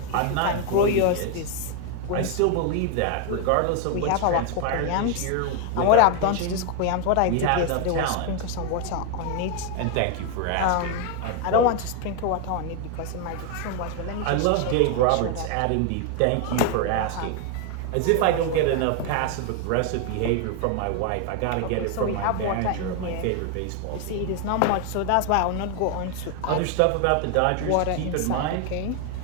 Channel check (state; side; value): different; both; correlation 0.01